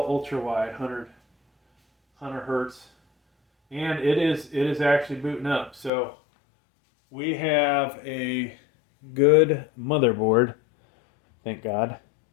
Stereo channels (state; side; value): drops out; right; at 5.9 s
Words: Ultrawide 100 Hertz, and it is actually booting up. So, we have a good motherboard, thank God.